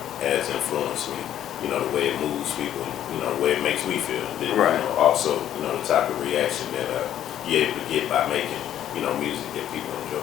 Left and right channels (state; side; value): quieter; right; 11.2 dB